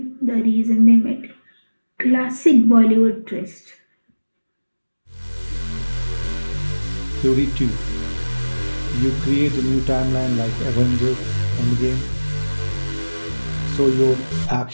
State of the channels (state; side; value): inverted; both; correlation -1.00